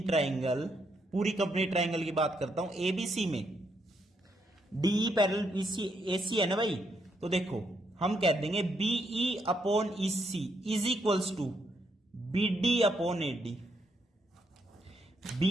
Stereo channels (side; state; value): both; normal; correlation 0.77